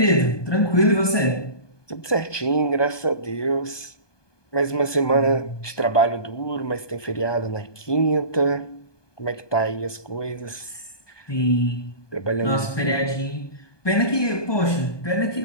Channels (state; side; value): late; right; 1.2 ms